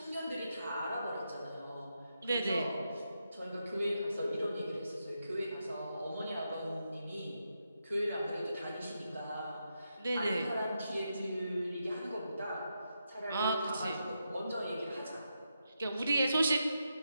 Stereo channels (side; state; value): both; inverted; correlation -0.85